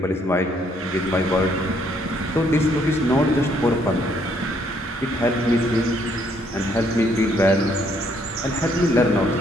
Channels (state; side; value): normal; both; correlation 0.68